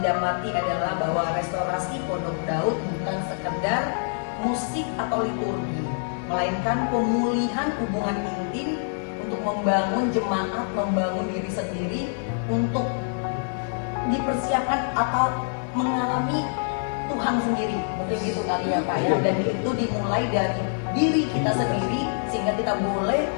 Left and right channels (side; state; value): right; silent; 61 dB below the other